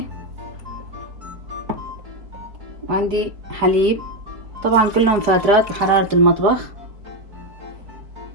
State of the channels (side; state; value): left; late; 4.4 ms